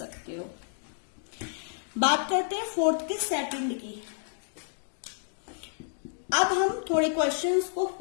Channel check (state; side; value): silent; right; digital silence